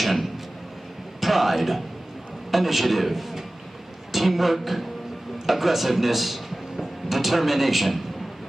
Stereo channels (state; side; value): normal; both; correlation 0.97